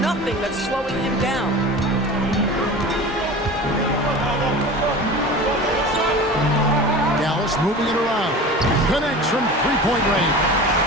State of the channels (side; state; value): both; normal; correlation 0.35